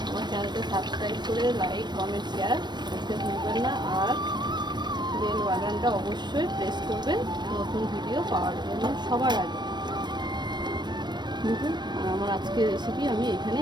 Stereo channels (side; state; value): left; late; 0.21 ms